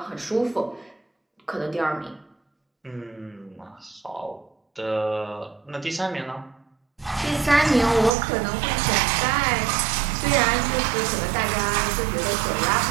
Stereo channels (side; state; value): left; drops out; at 8.1 s